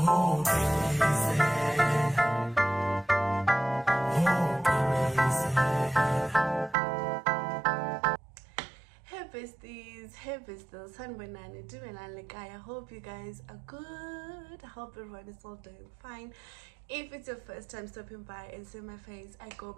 hey besties, hey besties, Sanbonani, Dumelan I hope you guys are good. I hope everyone is all doing fine. If it's your first time stopping by and see my face, I go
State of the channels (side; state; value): left; drops out; at 6.8 s